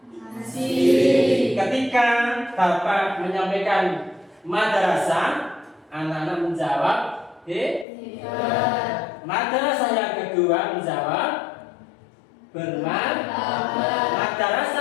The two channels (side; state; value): right; drops out; at 7.9 s